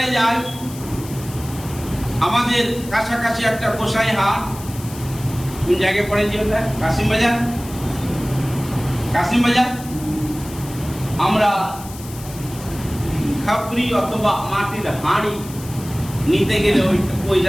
যাই, আমাদের কাছাকাছি একটা গোসাই হাট, কোন জায়গায় পড়ে যে ওটা, কাশিম বাজার, কাশিম বাজার। আমরা খাপড়ি অথবা মাটির হাঁড়ি নিতে গেলে ওই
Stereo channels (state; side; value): noise; left; hiss, 16 dB below the sound